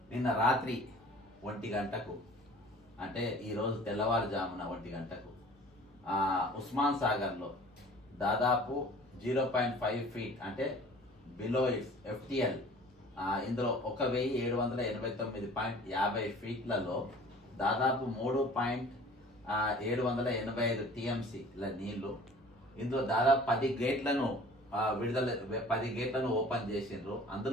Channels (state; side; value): normal; both; correlation 0.47